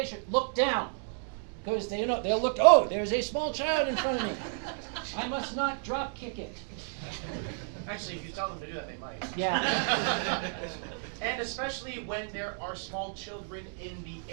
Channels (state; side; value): silent; left; 56 dB below the other